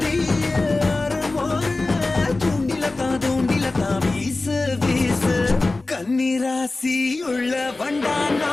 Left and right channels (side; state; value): right; quieter; 3.2 dB